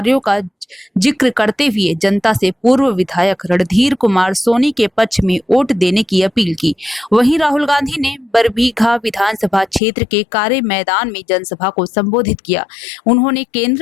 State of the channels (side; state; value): right; drops out; at 9.8 s